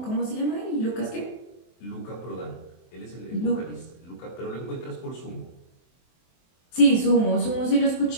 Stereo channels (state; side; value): late; right; 23 ms